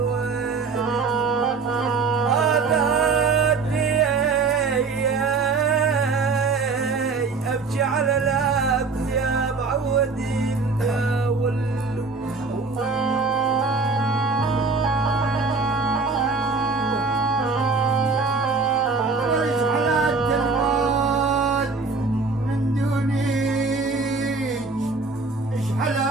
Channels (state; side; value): quieter; left; 4.3 dB